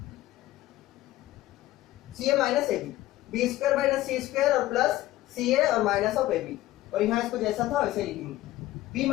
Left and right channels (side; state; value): right; quieter; 15.7 dB